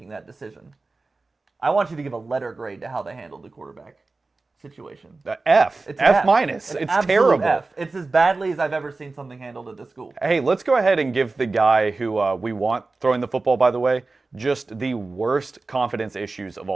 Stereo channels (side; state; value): left; quieter; 3.6 dB